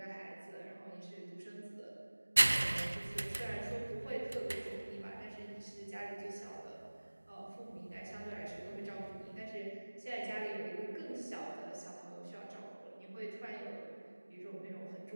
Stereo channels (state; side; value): inverted; both; correlation -1.00